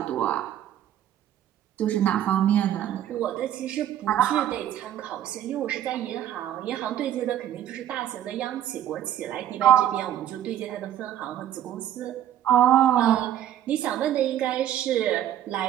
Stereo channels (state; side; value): quieter; left; 11.6 dB